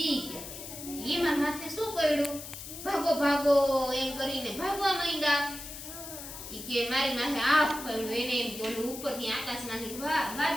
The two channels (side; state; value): left; noise; hiss, 11 dB below the sound